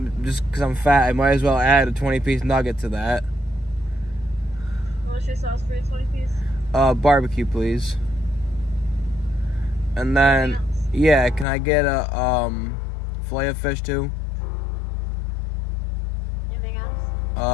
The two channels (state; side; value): drops out; right; at 11.5 s